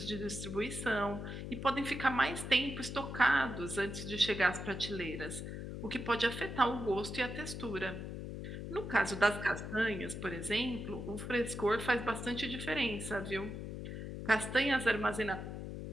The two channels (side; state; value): left; noise; hum, 7 dB below the sound